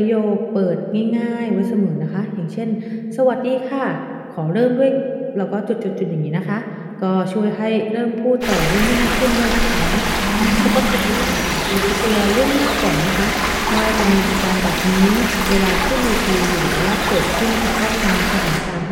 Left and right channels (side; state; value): both; identical; correlation 1.00